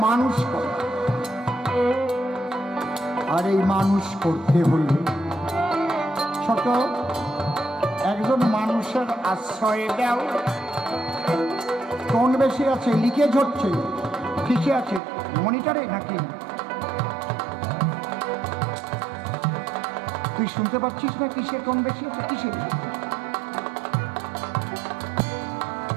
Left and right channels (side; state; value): left; drops out; at 15.0 s